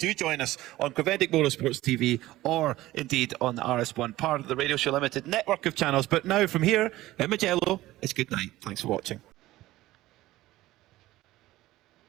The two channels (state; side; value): quieter; left; 16.6 dB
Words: join us on Creventic Motorsports TV or indeed on the RS1, part of the Radio Show Limited network of channels. But now from here in Mugello, it's good night. Thanks for watching.